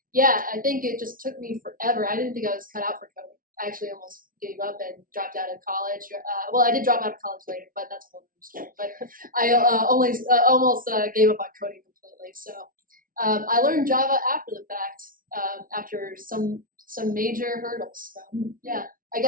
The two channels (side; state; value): left; late; 0.40 ms